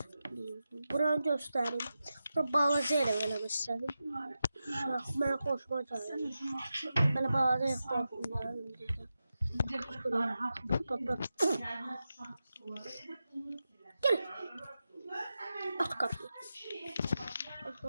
buranı göstereyim. Bura balaca elə eləmək istedim. Mənə xoşuma gəlir. Belə balaca yaxşı. Gel. At kapıyı.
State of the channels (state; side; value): inverted; both; correlation -0.91